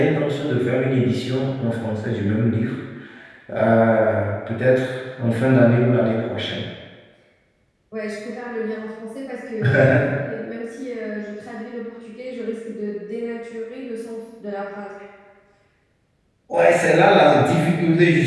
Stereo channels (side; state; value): both; identical; correlation 1.00